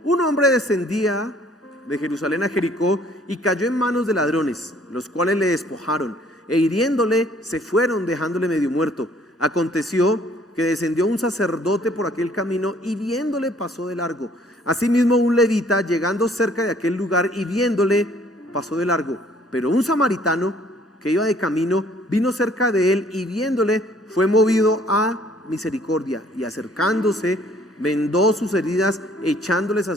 un hombre descendía de Jerusalén a Jericó y cayó en manos de ladrones, los cuales le despojaron, e hiriéndole se fueron, dejándole medio muerto. Aconteció que descendió un sacerdote por aquel camino, y viéndole pasó de largo. Asimismo un levita, llegando cerca de aquel lugar y viéndole, pasó de largo. Pero un samaritano que iba de camino vino cerca de él, y viéndole fue movido a misericordia, y acercándose vendó sus heridas, echándoles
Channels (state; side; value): normal; both; correlation 0.59